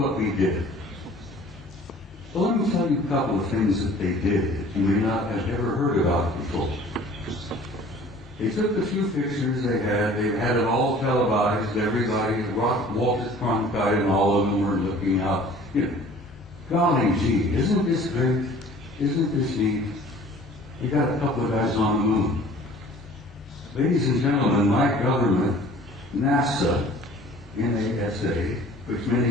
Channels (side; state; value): both; normal; correlation 0.49